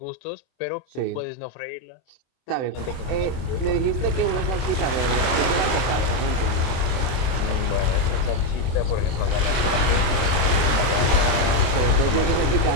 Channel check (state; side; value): late; right; 24 ms